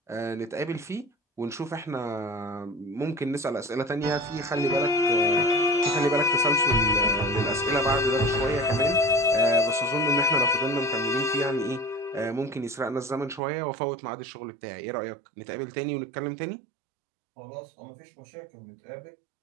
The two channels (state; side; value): drops out; left; at 13.4 s